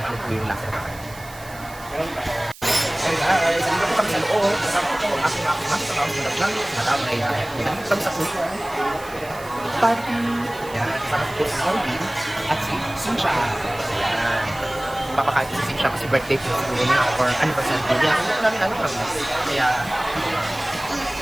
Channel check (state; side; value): noise; right; hiss, 19 dB below the sound